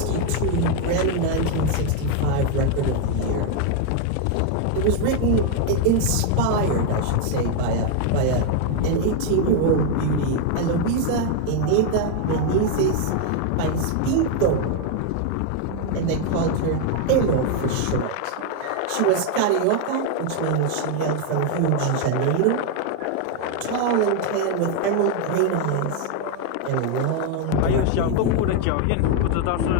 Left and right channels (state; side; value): different; both; correlation 0.01